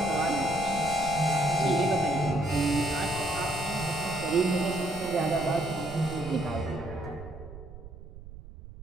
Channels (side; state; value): right; noise; rumble, 15 dB below the sound